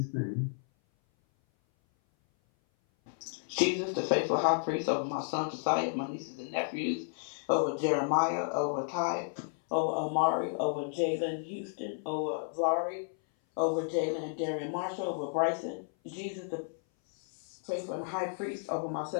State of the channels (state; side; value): silent; right; 56 dB below the other